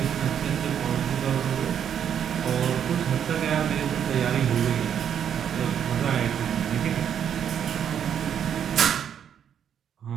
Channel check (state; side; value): quieter; left; 8.8 dB